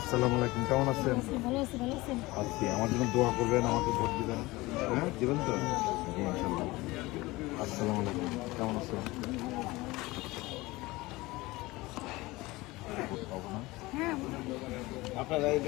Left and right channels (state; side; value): quieter; right; 20.9 dB